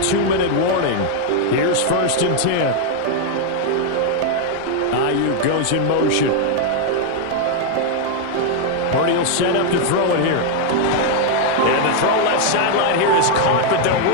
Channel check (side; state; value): both; different; correlation 0.00